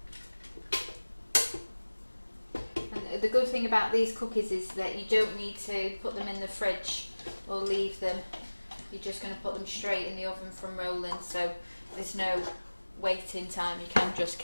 And the good thing about these cookies is that you don't need to put them in the fridge or leave them. You're just going to put them straight in the oven from rolling, so there's no waiting time. You can just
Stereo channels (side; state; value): both; inverted; correlation -1.00